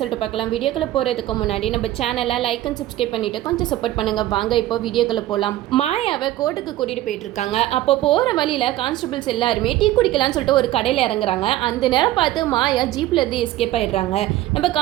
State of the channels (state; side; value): quieter; left; 14.9 dB